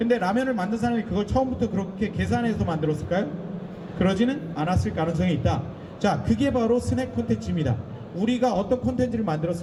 라면을 만든 사람이 그걸 처음부터 그렇게 계산해서 만들었을까요? 그러지는 않았을 가능성이 있다. 자, 그게 바로 스낵 콘텐츠입니다. 우리가 어떤 콘텐츠를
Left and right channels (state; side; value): identical; both; correlation 1.00